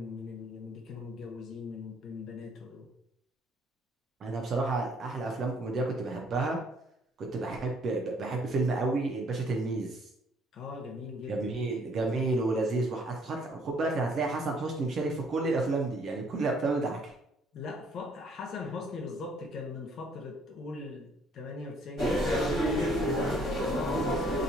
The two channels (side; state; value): both; normal; correlation 0.63